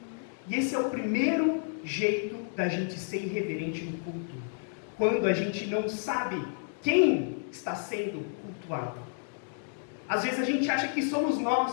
E esse é o primeiro jeito da gente ser irreverente no culto. Quando a gente não sabe quem está sendo cultuado. Às vezes a gente acha que somos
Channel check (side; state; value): right; silent; digital silence